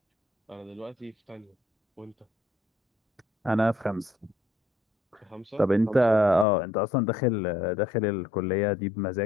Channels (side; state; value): right; drops out; at 6.5 s